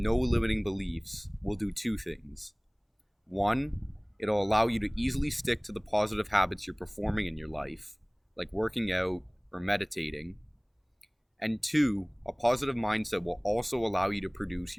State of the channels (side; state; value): both; identical; correlation 1.00